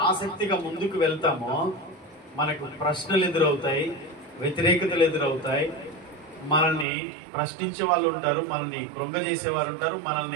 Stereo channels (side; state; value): left; drops out; at 6.9 s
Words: ఆసక్తిగా ముందుకు వెళ్తామో మనకు ప్రశ్నలు ఎదురవుతాయి, వ్యతిరేకతలు ఎదురవుతాయి, మనల్ని ప్రశ్నించే వాళ్ళు ఉంటారు, మనల్ని కృంగజేసేవారు ఉంటారు,